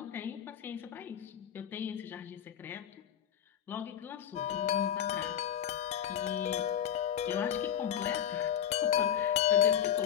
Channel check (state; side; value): quieter; right; 9.6 dB